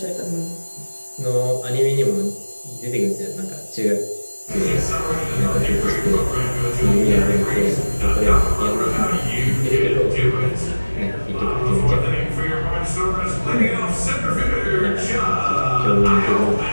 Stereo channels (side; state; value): both; inverted; correlation -1.00